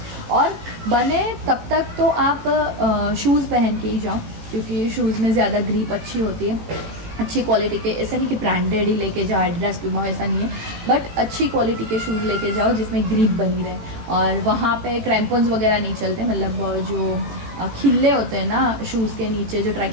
और बने तब तक तो आप शूज़ पहन के ही जाओ क्योंकि शूज़ में ज़्यादा ग्रिप अच्छी होती है, अच्छी क्वालिटी के। ऐसा नहीं कि ब्रांडेड ही लेके जाओ, एडिडास प्यूमा, ऐसा नहीं है, बट अच्छी क्वालिटी के शूज़ लेके जाओ जिसमें ग्रिप बनी रहे। और वहाँ पे क्रैम्पन्स वगैरह नहीं चलते, मतलब जो खिल्ले होते हैं ना शूज़ के नीचे जो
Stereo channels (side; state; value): left; late; 18 ms